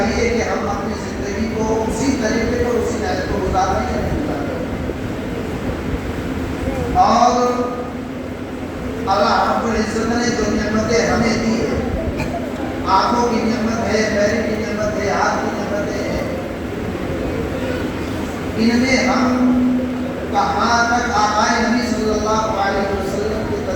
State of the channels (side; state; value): both; identical; correlation 1.00